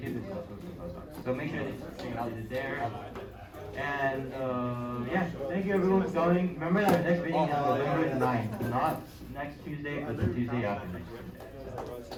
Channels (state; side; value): identical; both; correlation 1.00